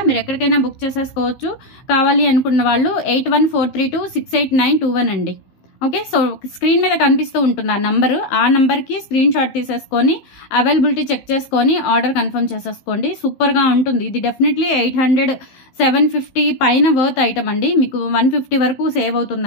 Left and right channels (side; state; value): right; late; 15 ms